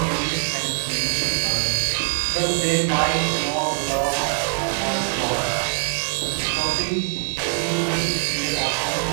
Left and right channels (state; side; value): silent; left; digital silence